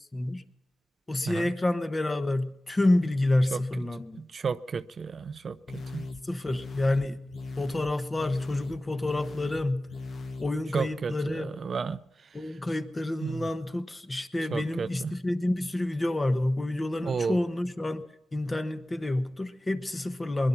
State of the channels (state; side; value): normal; both; correlation 0.95